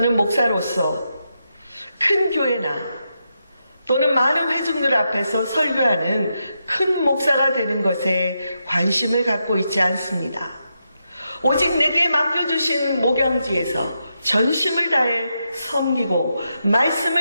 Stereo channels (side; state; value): both; inverted; correlation -0.84